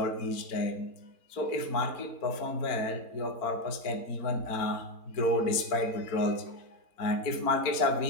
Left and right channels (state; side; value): late; right; 4.4 ms